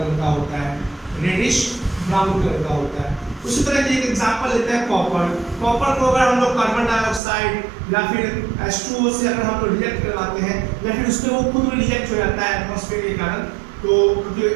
का होता है, रेडिश ब्राउन कलर का होता है। उसी तरह की एक एग्जांपल लेते हैं कॉपर। कॉपर को अगर हम लोग कार्बन डाइऑक्साइड या फिर H2O से अगर हम लोग रिएक्ट करवाते हैं या फिर उसमें वो खुद रिएक्ट हो जाता है एटमॉस्फेयर के कारण, तो क्योंकि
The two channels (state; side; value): drops out; left; at 7.2 s